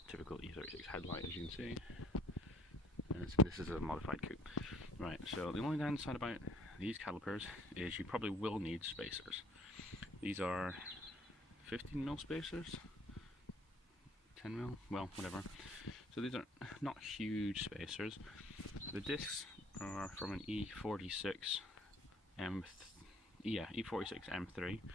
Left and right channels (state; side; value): normal; both; correlation 0.60